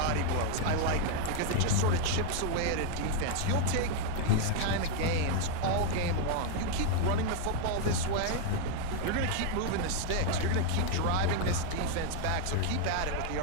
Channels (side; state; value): both; different; correlation 0.00